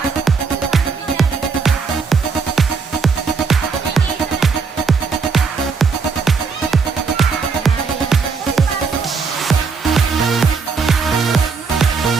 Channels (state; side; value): quieter; left; 5.2 dB